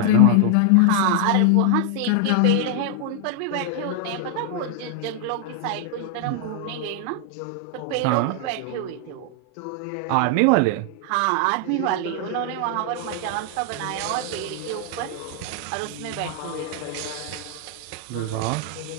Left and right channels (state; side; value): different; both; correlation 0.00